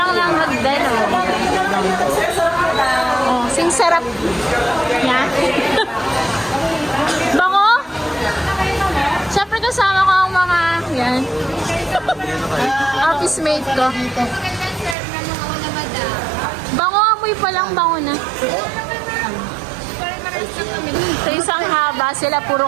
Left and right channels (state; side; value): drops out; left; at 15.0 s